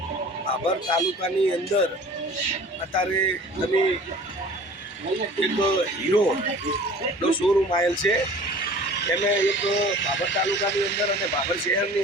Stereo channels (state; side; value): normal; both; correlation 0.45